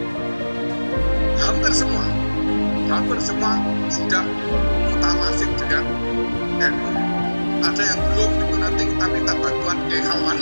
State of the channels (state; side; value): inverted; both; correlation -1.00